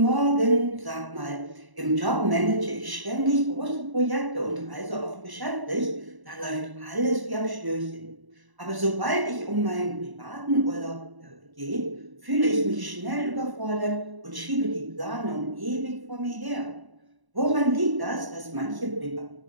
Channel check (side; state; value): left; late; 1.0 ms